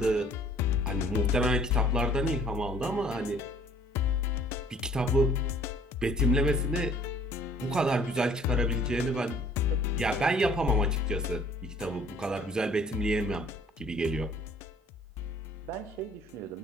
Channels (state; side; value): normal; both; correlation 0.57